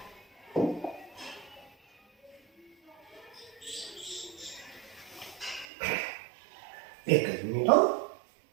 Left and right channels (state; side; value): drops out; left; at 5.7 s